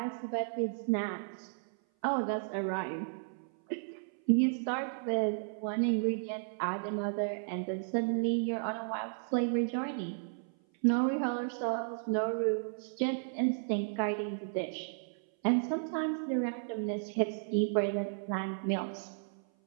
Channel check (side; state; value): left; silent; 55 dB below the other